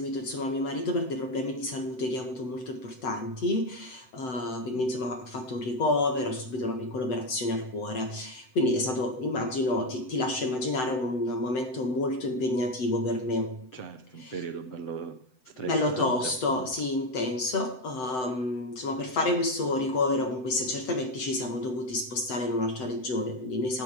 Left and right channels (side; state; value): right; late; 7.9 ms